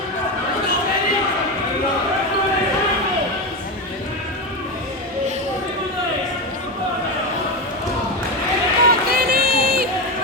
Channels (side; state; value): both; normal; correlation 0.15